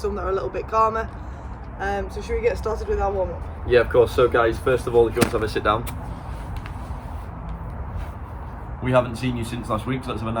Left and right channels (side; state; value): both; identical; correlation 1.00